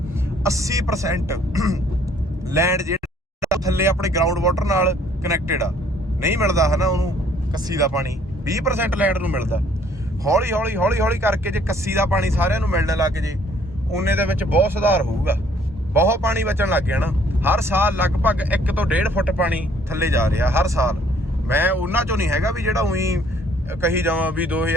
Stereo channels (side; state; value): both; normal; correlation 0.61